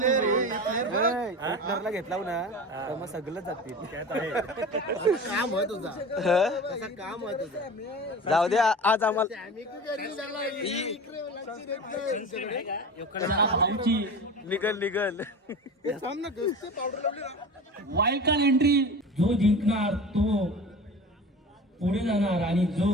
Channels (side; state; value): both; normal; correlation 0.33